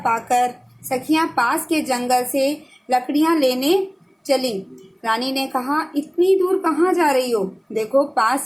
सखियां पास के जंगल से लकड़ियां लेने चली। रानी ने कहा, इतनी दूर कहाँ जा रही हो? देखो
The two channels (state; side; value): identical; both; correlation 1.00